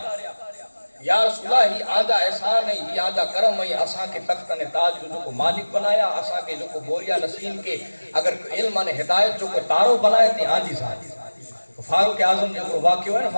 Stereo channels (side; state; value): both; inverted; correlation -1.00